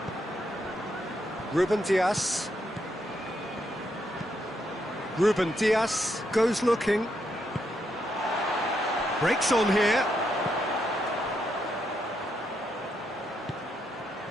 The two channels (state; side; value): normal; both; correlation 0.79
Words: Ruben Dias. Ruben Dias goes looking. Breaks on here.